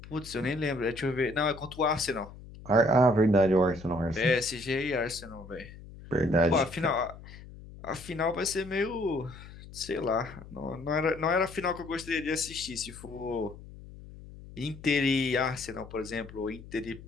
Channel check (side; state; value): left; noise; hum, 16 dB below the sound